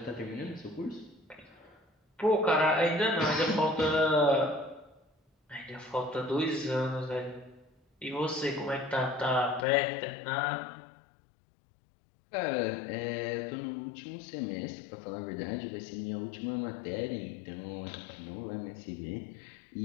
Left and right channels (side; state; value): right; drops out; at 9.7 s